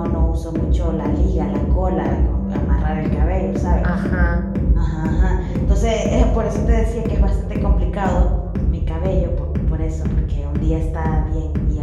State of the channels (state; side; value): identical; both; correlation 1.00